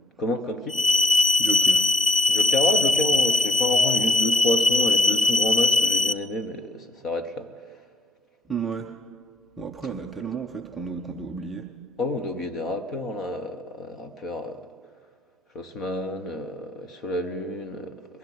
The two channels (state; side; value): normal; both; correlation 0.70